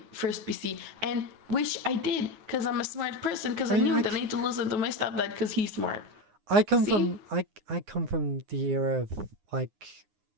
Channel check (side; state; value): left; late; 9.7 ms